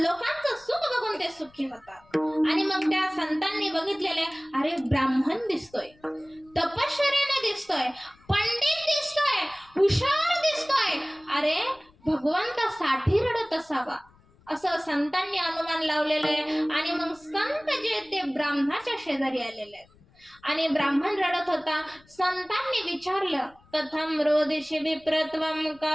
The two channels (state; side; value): noise; left; rumble, 29 dB below the sound